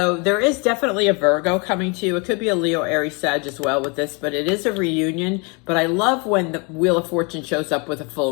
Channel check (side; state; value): right; quieter; 31.6 dB